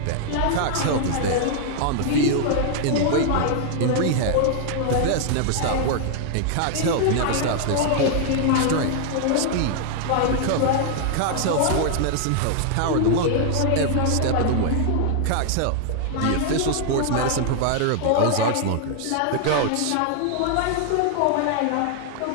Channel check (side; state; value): both; different; correlation 0.00